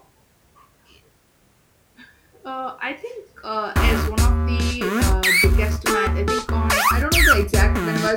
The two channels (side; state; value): both; identical; correlation 1.00